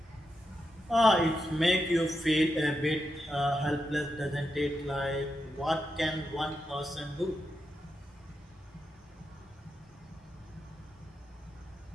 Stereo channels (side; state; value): both; normal; correlation 0.86